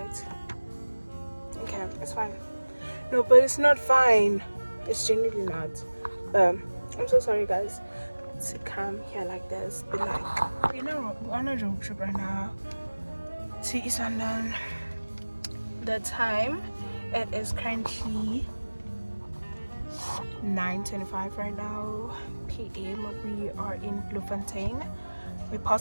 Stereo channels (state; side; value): inverted; both; correlation -1.00